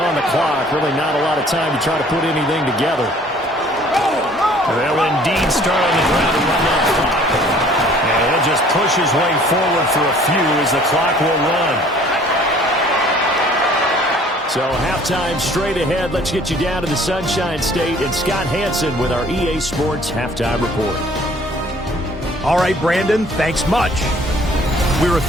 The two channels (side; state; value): both; normal; correlation 0.55